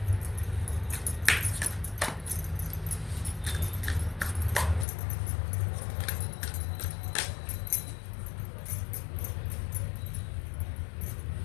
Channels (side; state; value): right; drops out; at 4.9 s